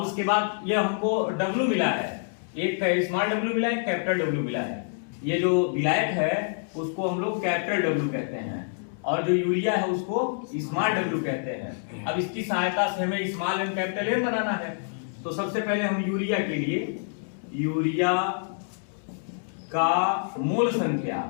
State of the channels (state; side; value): silent; right; digital silence